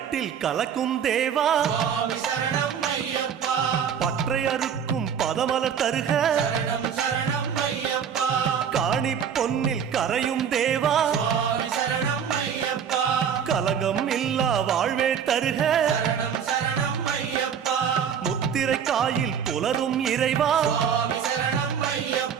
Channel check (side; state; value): left; quieter; 7.8 dB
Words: கலக்கும் தேவா சுவாமி சரணம் ஐயப்பா பற்றை அறுக்கும் பதமலர் தருக சரணம் சரணம் ஐயப்பா காணி பொன்னில் கரையும் தேவா சுவாமி சரணம் ஐயப்பா கலங்கம் இல்லா வாழ்வே தருக சரணம் சரணம் ஐயப்பா முத்திரை காயில் புலரும் இறைவா சுவாமி சரணம்